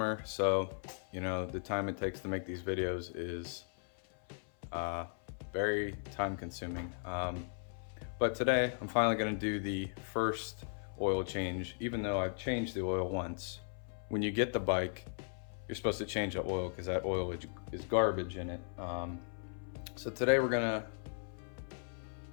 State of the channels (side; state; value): right; silent; 53 dB below the other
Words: so you know, the time it takes to make these videos is very time consuming. But today, I'm finally gonna do the first oil change, even though I've changed the oil once. When you get the bike, you're supposed to change the oil because that oil is garbage in it. So today we're gonna